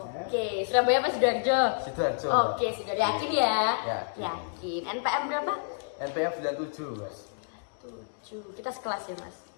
Surabaya apa Sidoarjo? Sidoarjo. Oke, sudah yakin ya? Yakin. Yakin. NPM berapa? NPM 97, Mas. 7. Kita sekelas ya, Mas?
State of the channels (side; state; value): right; silent; digital silence